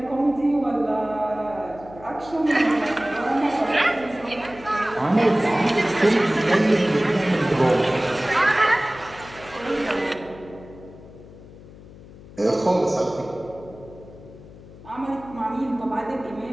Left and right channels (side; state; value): left; noise; hum, 19 dB below the sound